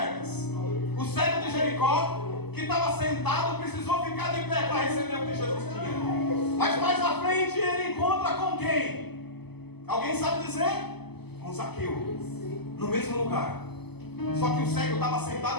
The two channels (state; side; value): late; right; 0.98 ms